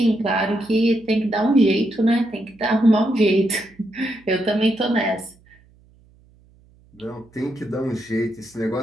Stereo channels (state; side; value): noise; right; hum, 30 dB below the sound